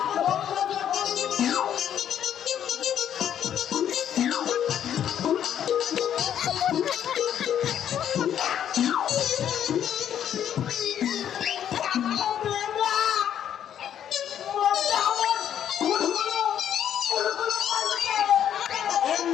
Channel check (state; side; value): quieter; right; 9.8 dB